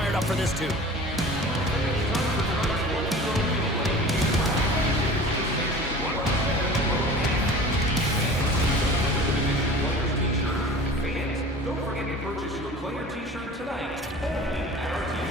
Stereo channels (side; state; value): both; normal; correlation 0.40